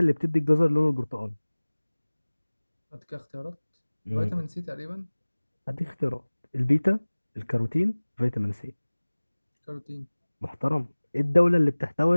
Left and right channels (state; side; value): inverted; both; correlation -1.00